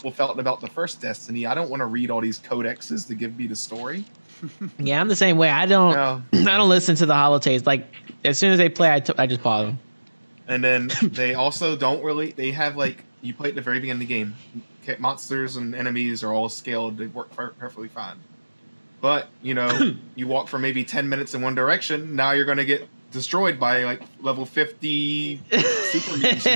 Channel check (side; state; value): both; inverted; correlation -1.00